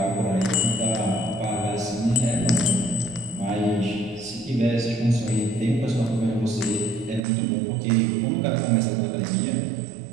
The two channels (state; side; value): drops out; left; at 7.2 s